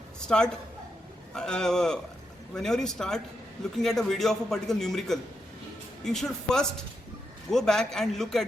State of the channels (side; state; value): both; normal; correlation 0.83